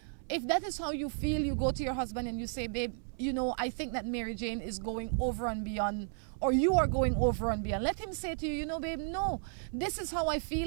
If that is how you feel, you go to your husband and you say, babe, you know, I think that Mary Jane is going over and beyond, or you are going over and beyond. Let him say to you, you know, babe, no, this is how I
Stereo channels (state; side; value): silent; left; 55 dB below the other